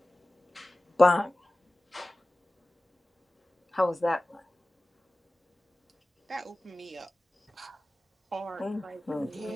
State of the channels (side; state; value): both; normal; correlation 0.97